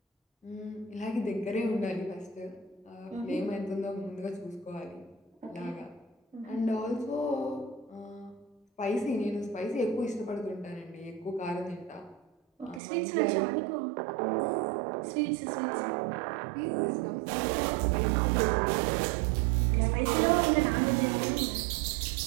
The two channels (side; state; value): left; drops out; at 12.8 s